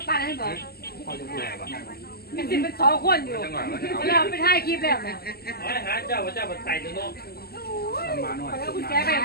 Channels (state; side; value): late; right; 0.45 ms